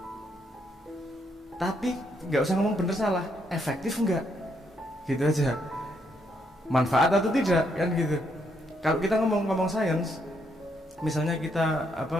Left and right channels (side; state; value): both; normal; correlation 0.75